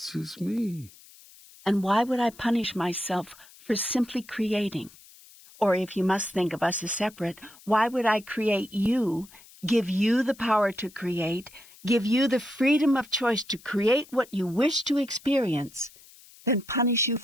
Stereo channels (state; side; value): noise; left; hiss, 23 dB below the sound